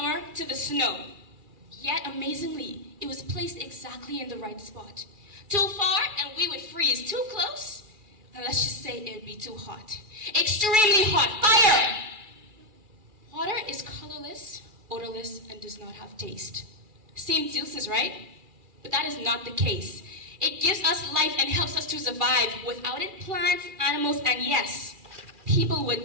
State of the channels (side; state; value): left; late; 2.4 ms